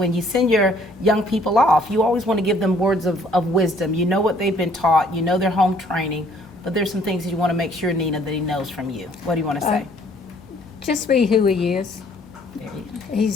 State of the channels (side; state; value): both; normal; correlation 0.61